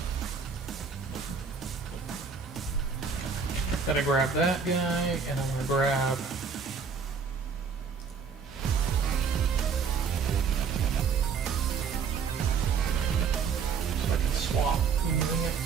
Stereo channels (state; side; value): quieter; left; 5.8 dB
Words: Gotta grab that guy, and I'm gonna grab so I can swap using it.